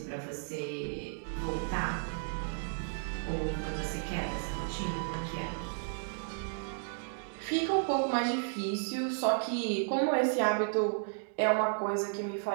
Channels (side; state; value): left; silent; digital silence